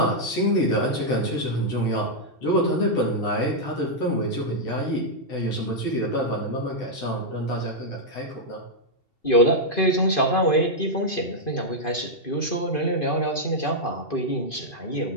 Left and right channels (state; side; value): late; right; 2.5 ms